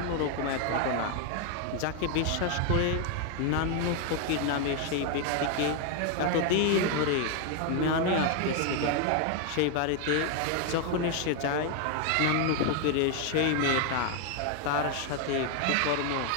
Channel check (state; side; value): different; both; correlation 0.01